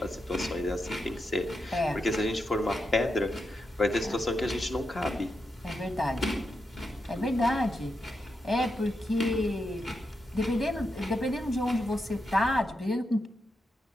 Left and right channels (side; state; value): both; normal; correlation 0.86